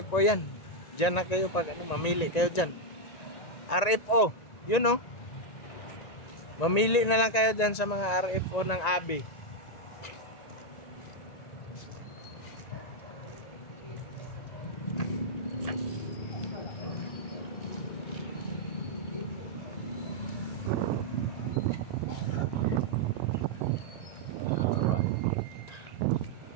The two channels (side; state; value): right; late; 1.8 ms